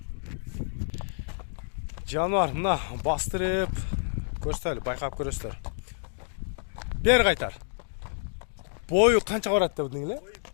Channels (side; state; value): right; silent; digital silence